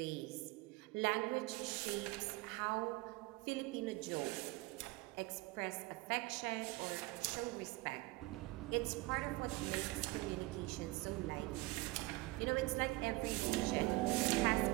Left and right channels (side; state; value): left; quieter; 21.1 dB